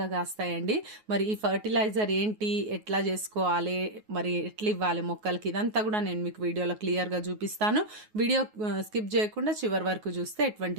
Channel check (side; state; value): left; late; 9.4 ms